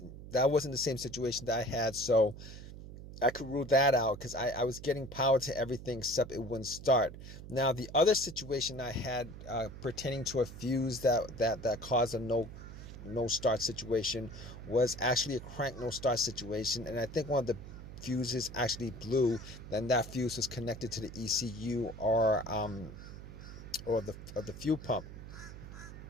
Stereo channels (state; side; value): noise; right; hum, 13 dB below the sound